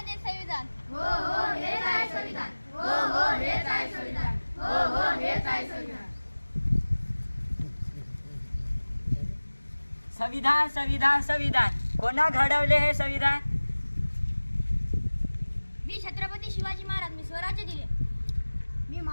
संविधान. हो हो हेच आहे संविधान, हो हो हेच आहे संविधान, हो हो हेच आहे संविधान. संविधान संविधान संविधान कोणा घडवले हे संविधान? मी छत्रपती शिवाजी महाराज, मी स्वराज्य दिले. मी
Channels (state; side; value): inverted; both; correlation -1.00